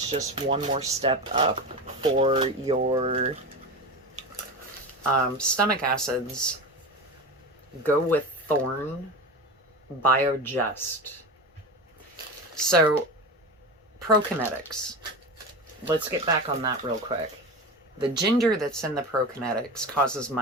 just one more step up for your stomach acids, go with Thorne Biogest. So, prokenetics. Let's get back on that real quick. The ginger that's in the prokenetics causes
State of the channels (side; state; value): both; normal; correlation 0.25